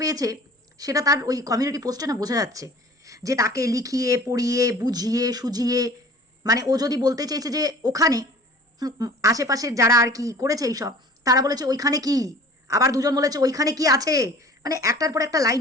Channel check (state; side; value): normal; both; correlation 0.45